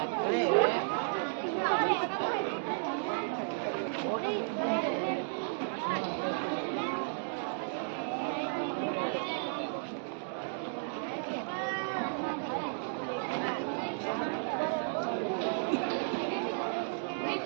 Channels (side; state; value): left; silent; digital silence